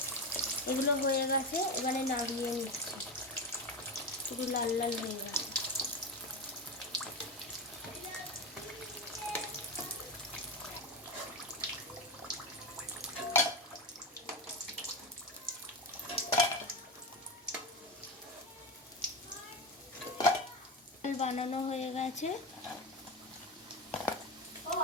এগুলো হয়ে গেছে, এবারে নাড়িয়ে নিচ্ছি, পুরো লাল লাল হয়ে গেছে। বানানো হয়ে গেছে,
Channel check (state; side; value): normal; both; correlation 0.18